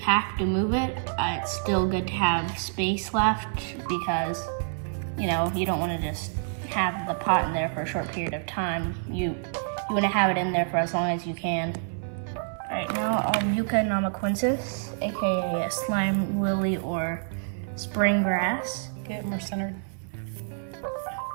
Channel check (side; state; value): left; silent; 60 dB below the other